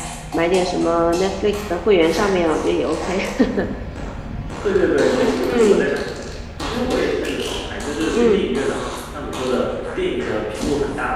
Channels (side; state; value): both; identical; correlation 1.00